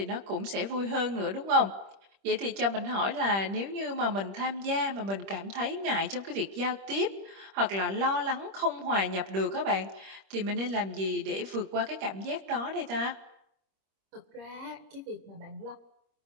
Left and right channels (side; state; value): left; late; 26 ms